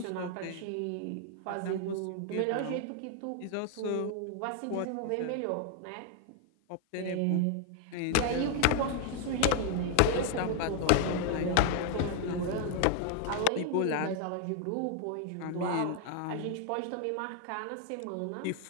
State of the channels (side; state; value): both; different; correlation 0.00